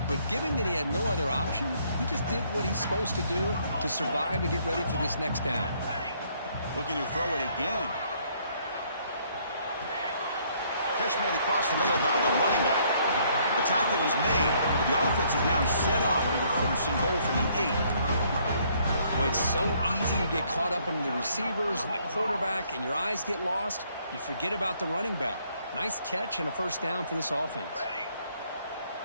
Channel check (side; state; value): both; inverted; correlation -0.66